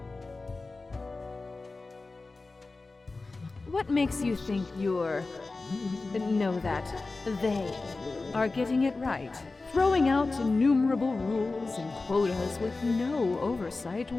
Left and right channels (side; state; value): right; quieter; 3.6 dB